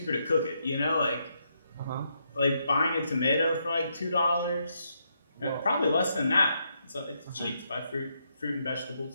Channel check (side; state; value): both; inverted; correlation -0.78